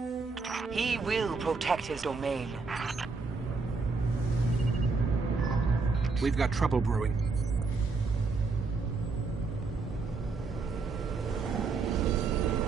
He will protect his domain. We've got trouble brewing.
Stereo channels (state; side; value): quieter; left; 4.2 dB